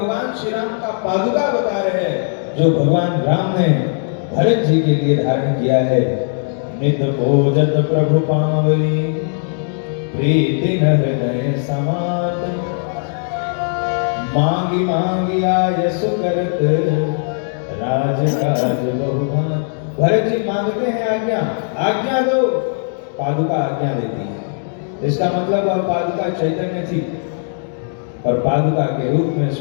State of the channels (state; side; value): silent; right; digital silence